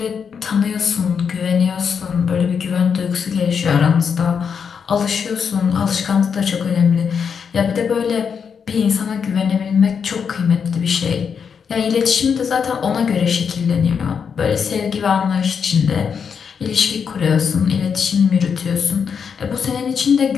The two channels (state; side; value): quieter; right; 6.6 dB